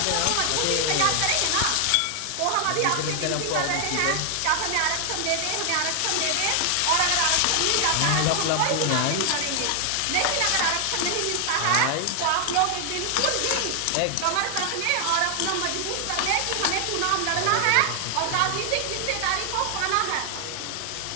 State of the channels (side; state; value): both; different; correlation 0.00